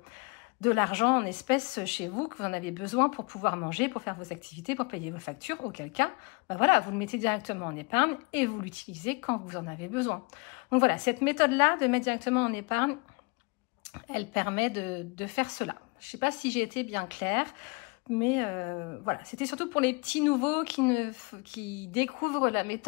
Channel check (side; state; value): right; quieter; 29.7 dB